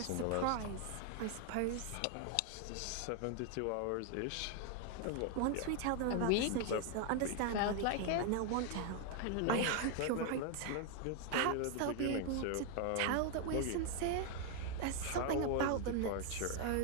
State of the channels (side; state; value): both; different; correlation 0.01